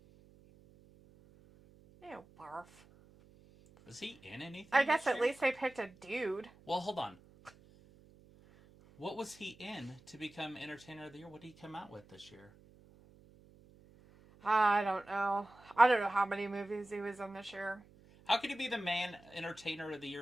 Ew, barf. Was he in anything? I guess this at year? least they picked a dude. Well, hold on. What was he in to become Entertainer of the Year? What did he come out with this year? I don't know. I don't know how many movies he was in this year. How could he be the man Entertainer of the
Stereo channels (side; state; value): right; noise; hum, 25 dB below the sound